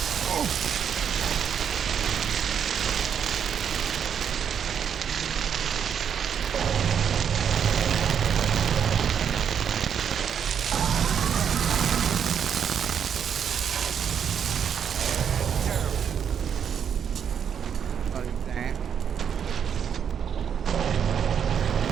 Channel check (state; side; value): quieter; left; 8.0 dB